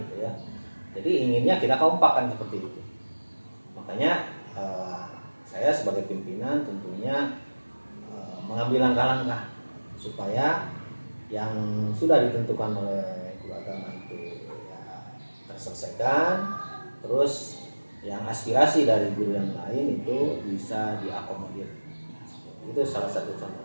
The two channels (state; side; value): inverted; both; correlation -1.00